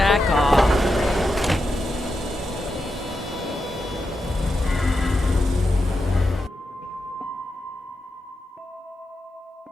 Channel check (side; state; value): both; normal; correlation 0.87